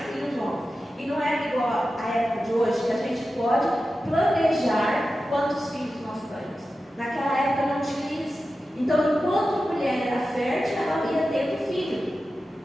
homens. E não é igual à época de hoje, que a gente pode planejar quantos filhos nós temos. Naquela época não tinha isso. Então, enquanto a mulher era fértil, ela ia tendo filho.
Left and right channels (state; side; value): normal; both; correlation 0.93